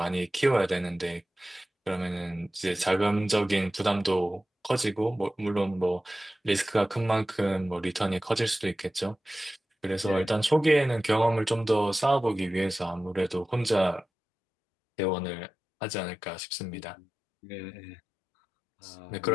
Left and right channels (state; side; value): drops out; right; at 14.1 s